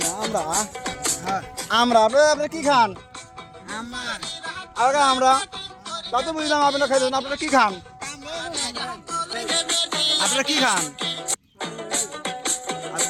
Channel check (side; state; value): both; identical; correlation 1.00